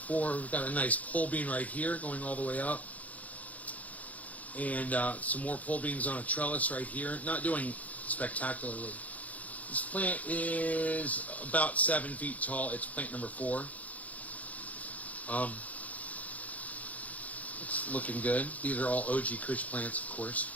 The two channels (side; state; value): right; late; 0.073 ms